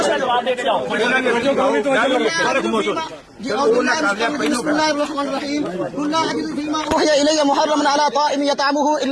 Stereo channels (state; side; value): identical; both; correlation 1.00